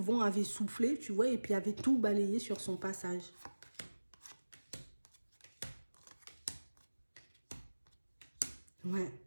avait soufflé, tu vois, et puis avait tout balayé sur son passage. Ouais,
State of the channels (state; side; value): inverted; both; correlation -1.00